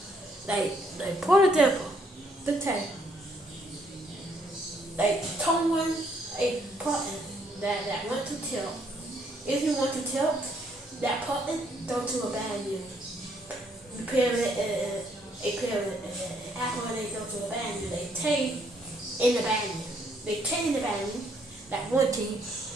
the tag. Like someone a button that went to tilt. If you want to tilt, that button don't do a bad news. You pair it, Apple they don't do a bad news. They take in the bad news. They take in the bad news. That one team.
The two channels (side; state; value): both; normal; correlation 0.69